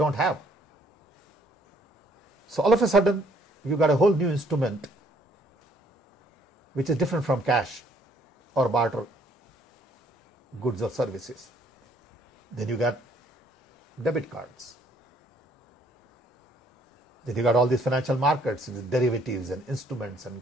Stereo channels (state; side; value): normal; both; correlation 0.64